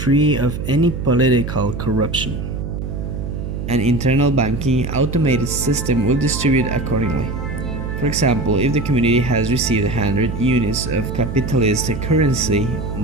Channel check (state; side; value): noise; right; hum, 5 dB below the sound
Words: of any political corruption. An internal banking automated system will distribute accordingly. For example, if the community has received 100 units of capitalist currency